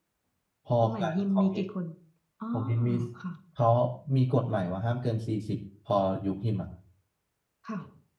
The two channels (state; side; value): identical; both; correlation 1.00